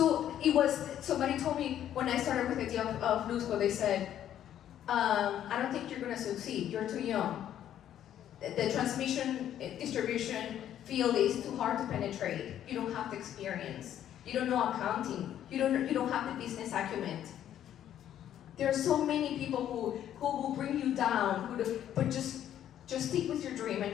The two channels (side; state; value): right; quieter; 10.9 dB